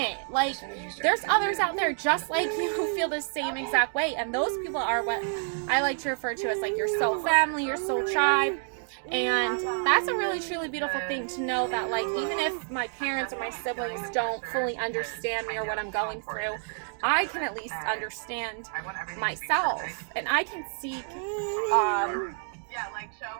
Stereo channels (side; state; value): left; silent; 59 dB below the other